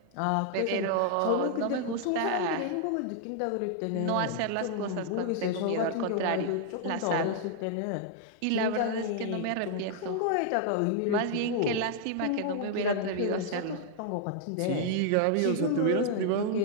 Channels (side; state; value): both; different; correlation 0.00